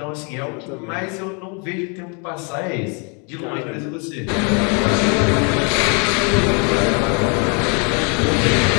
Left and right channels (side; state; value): right; quieter; 35.2 dB